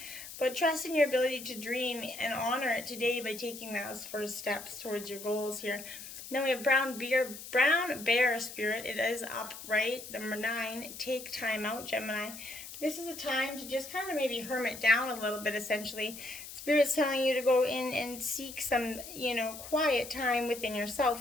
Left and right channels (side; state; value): left; noise; hiss, 12 dB below the sound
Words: But trust in your ability to dream and honor it today by taking those first steps towards your goals here. Then we have Brown Bear Spirit. It is upright. Number 9, take time out, Gemini. This is a time to just kind of maybe hermit down a little bit, essentially. Spirit's telling you to go in and seek some, quiet time within